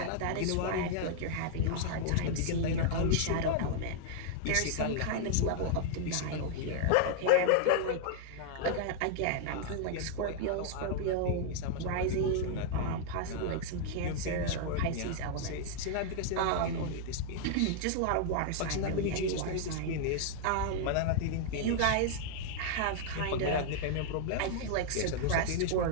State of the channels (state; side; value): different; both; correlation -0.01